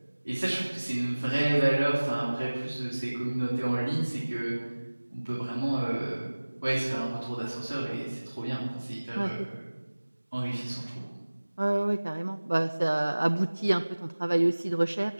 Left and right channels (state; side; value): inverted; both; correlation -1.00